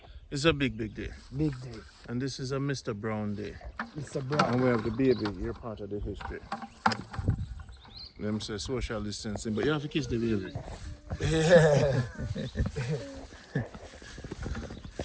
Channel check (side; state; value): both; identical; correlation 1.00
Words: It's a big, big day. Big day. And this is a Mr. Brown day. Mr. Brown. And we have the baby. You're part of the history. Them say social distancing, but you have to kiss the baby. Yeah.